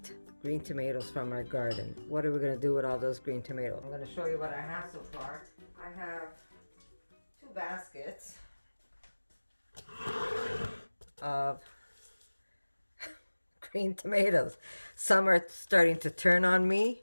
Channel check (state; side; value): inverted; both; correlation -1.00